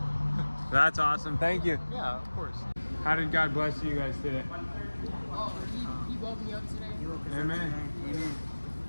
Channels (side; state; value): both; inverted; correlation -1.00